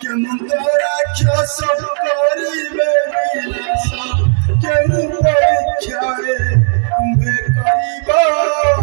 কেমন তো রাক্ষস করিবে বিনাশ কেউ পরীক্ষায় তুমে করিব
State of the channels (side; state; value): left; silent; digital silence